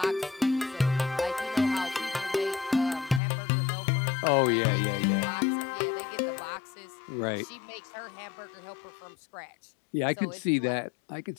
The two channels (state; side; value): drops out; right; at 3.2 s